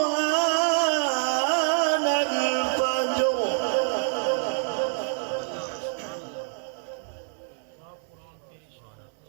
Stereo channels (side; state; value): left; silent; 60 dB below the other